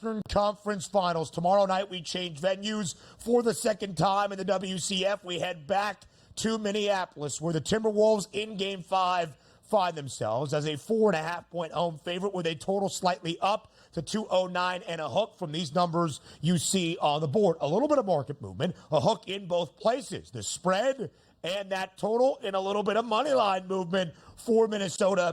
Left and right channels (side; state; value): both; identical; correlation 1.00